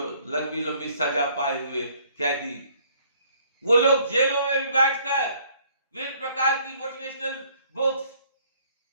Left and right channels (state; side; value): inverted; both; correlation -0.61